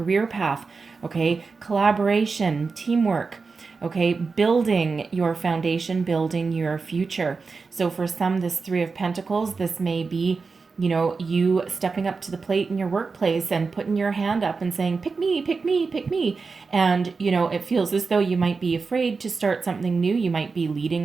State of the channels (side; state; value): left; quieter; 4.6 dB